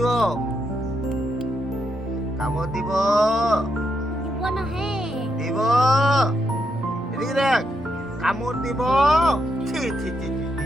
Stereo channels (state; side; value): normal; both; correlation 0.81